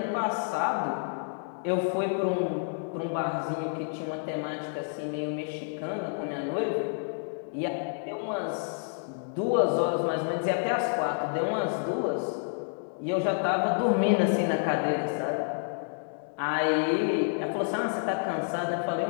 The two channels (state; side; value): silent; right; digital silence